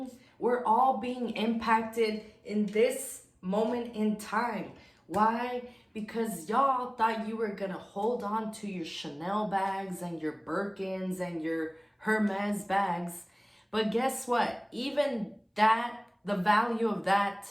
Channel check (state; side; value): identical; both; correlation 1.00